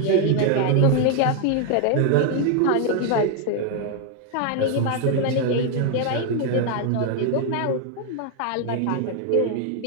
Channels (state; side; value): different; both; correlation 0.01